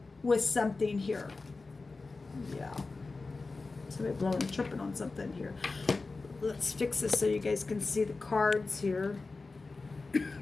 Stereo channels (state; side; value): quieter; right; 3.8 dB